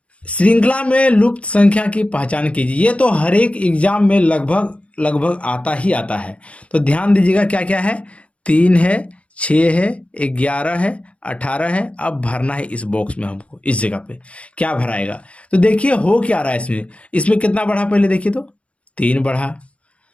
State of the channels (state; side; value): late; right; 0.062 ms